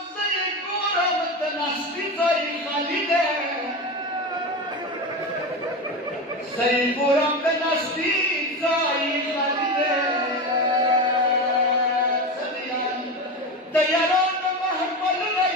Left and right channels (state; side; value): normal; both; correlation 0.21